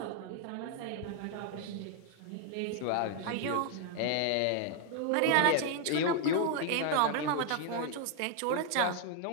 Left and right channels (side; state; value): both; different; correlation 0.00